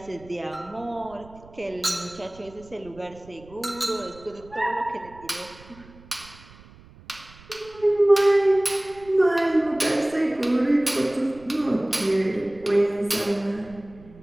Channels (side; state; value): right; noise; rumble, 22 dB below the sound